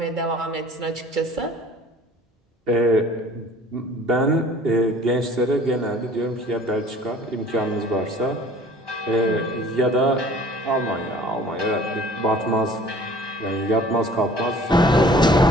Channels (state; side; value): normal; both; correlation 0.49